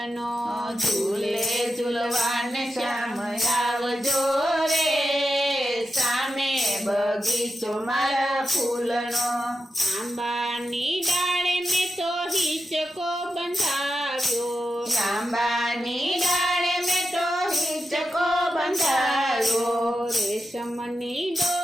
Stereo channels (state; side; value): normal; both; correlation 0.89